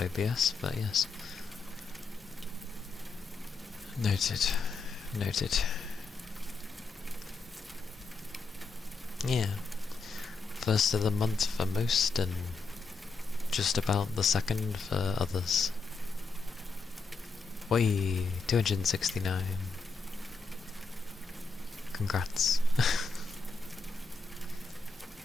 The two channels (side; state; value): right; quieter; 4.2 dB